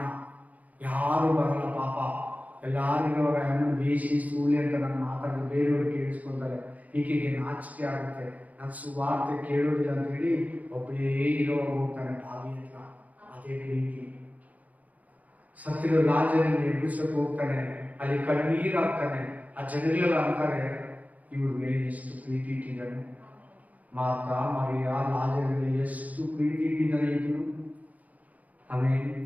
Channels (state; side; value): late; left; 0.076 ms